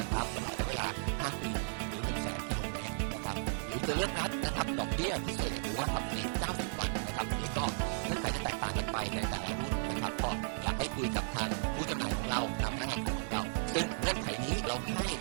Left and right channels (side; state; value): left; silent; digital silence